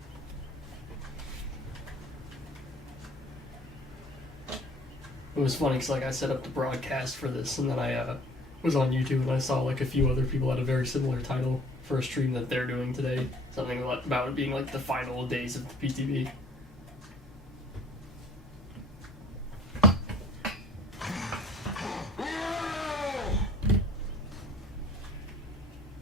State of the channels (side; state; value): both; normal; correlation 0.52